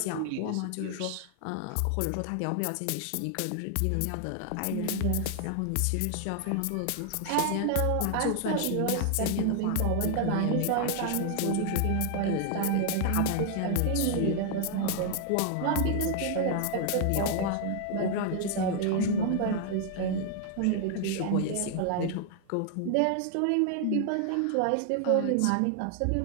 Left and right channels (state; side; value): different; both; correlation 0.00